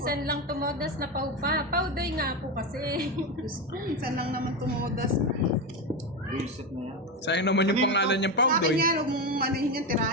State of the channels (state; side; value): normal; both; correlation 0.14